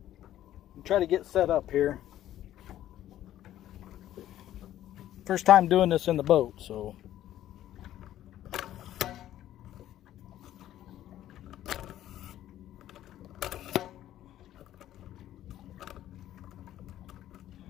try to get set up here. First time doing this in the boat, so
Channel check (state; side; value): quieter; right; 12.7 dB